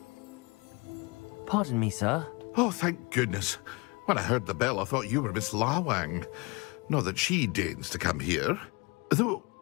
Pardon me, sir. Oh, thank goodness. When I heard the bell, I thought you were Miss Lawang. Not that she deigns to come here. Though,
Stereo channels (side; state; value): right; quieter; 27.8 dB